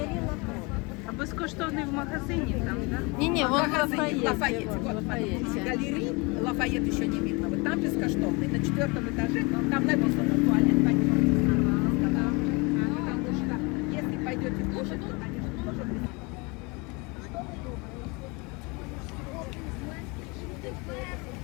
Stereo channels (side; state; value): right; quieter; 27.8 dB